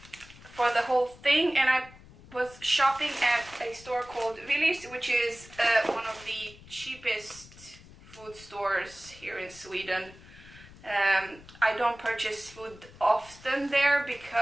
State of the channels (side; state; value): left; noise; rumble, 21 dB below the sound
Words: the whole thing, and I was shopping at a store called Willy, which is one of the cheapest food stores here in Sweden. I don't purchase food often there